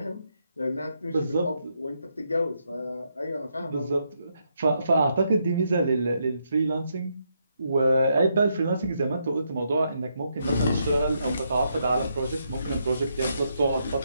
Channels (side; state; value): both; inverted; correlation -0.78